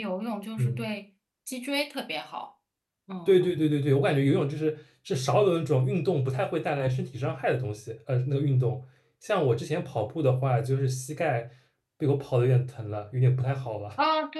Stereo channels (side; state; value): both; identical; correlation 1.00